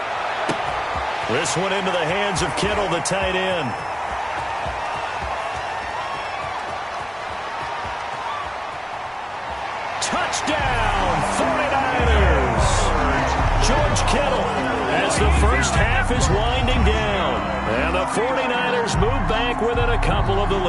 This one into the hands of Kittle, the tight end. Touchdown, 49ers. George Kittle as the first half is winding down. And the 49ers move back within a couple of the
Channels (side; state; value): both; identical; correlation 1.00